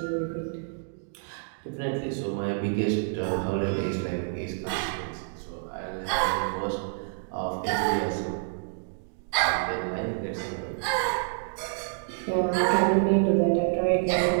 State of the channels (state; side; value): silent; left; digital silence